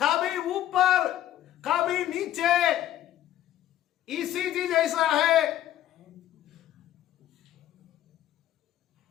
ऊपर कभी नीचे। ईसीजी जैसा है।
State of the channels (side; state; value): right; quieter; 12.6 dB